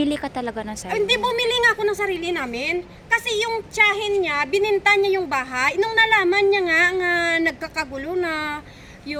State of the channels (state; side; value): identical; both; correlation 1.00